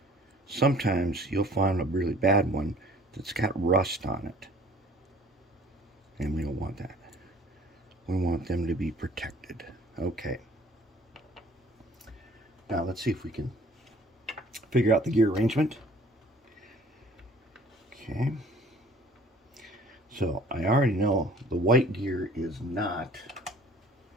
sometimes you'll find a really bad one that's got rust on it. And we don't want that. We want them to be protected. Okay. Now let's see if we can figure out the gear arrangement. Okay. So I already know the white gear is not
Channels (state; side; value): normal; both; correlation 0.53